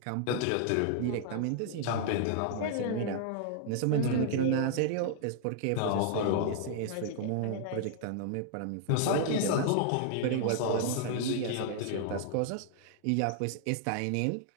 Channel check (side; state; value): both; different; correlation -0.01